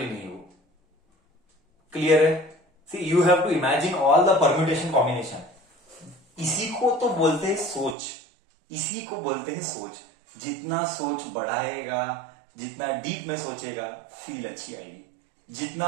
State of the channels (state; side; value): drops out; left; at 8.0 s